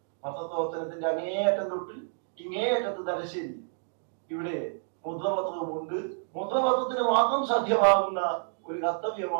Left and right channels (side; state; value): left; silent; digital silence